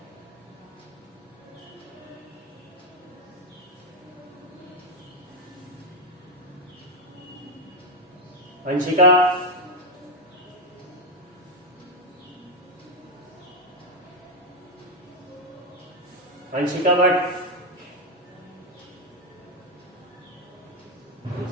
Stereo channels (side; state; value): both; normal; correlation 0.06